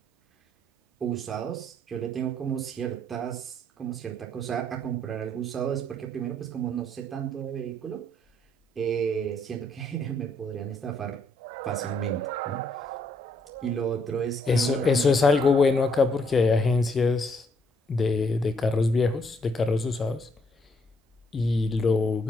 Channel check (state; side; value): normal; both; correlation 0.70